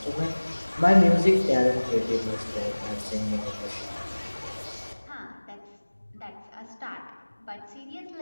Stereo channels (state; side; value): inverted; both; correlation -1.00